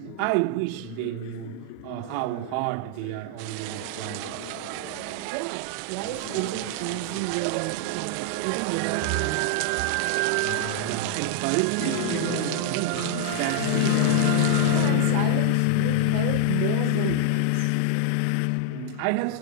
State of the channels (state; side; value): different; both; correlation 0.00